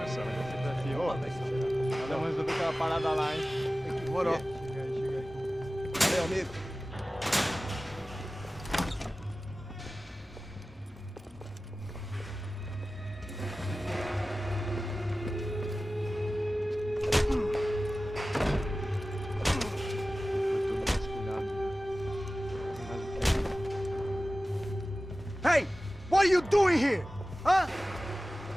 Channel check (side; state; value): both; normal; correlation 0.96